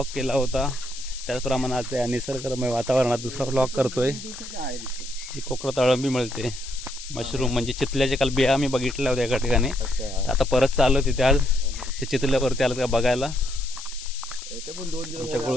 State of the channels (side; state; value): left; noise; hiss, 12 dB below the sound